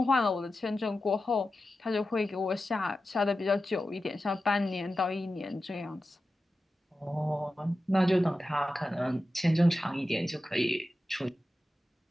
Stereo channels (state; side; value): normal; both; correlation 0.92